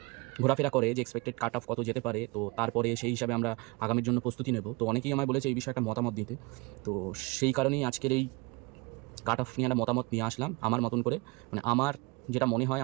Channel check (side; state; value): left; quieter; 26.0 dB